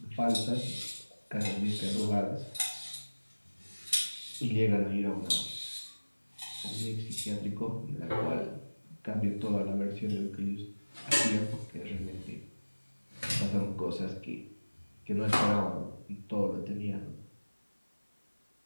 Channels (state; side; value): inverted; both; correlation -1.00